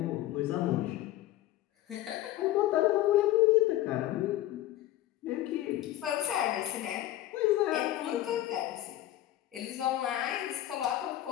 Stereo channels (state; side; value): quieter; right; 14.3 dB